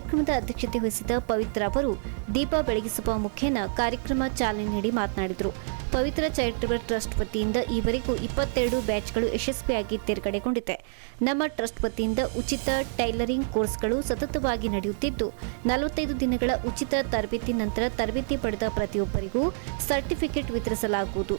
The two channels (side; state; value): left; silent; 60 dB below the other